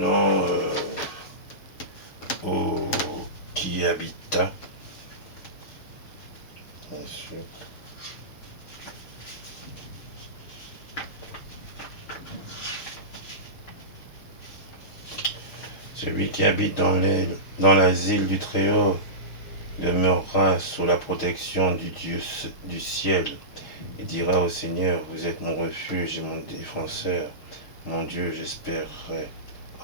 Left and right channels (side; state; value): right; late; 6.9 ms